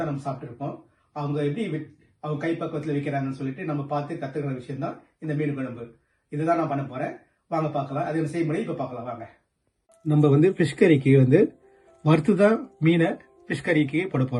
நம்ம சாப்பிட்டுருப்போம். அவங்க எப்படி அவங்க கைப்பக்குவத்தில் வைக்கிறாங்கன்னு சொல்லிட்டு நம்ம பார்த்து கத்துக்கிற விஷயம் தான் இந்த மீன் குழம்பு. இதுதான் நான் பண்ண போறேன். வாங்க பார்க்கலாம். அது செய்முறை இப்ப பார்க்கலாம் வாங்க. நம்ம ஃபிஷ் கறிக்கு வறுத்து தான் மீனை ஃபிஷ் கறிக்கு போட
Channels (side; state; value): both; identical; correlation 1.00